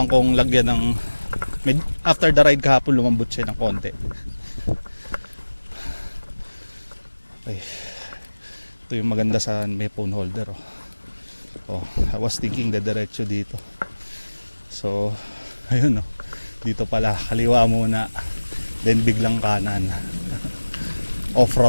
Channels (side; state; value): both; inverted; correlation -1.00